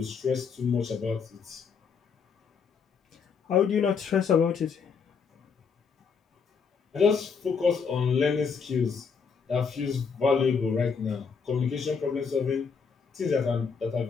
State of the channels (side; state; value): right; quieter; 5.8 dB